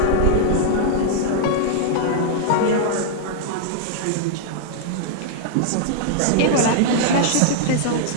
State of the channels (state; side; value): different; both; correlation -0.01